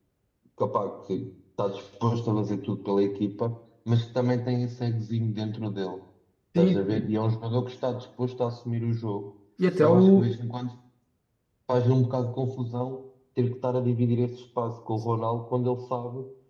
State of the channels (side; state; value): both; identical; correlation 1.00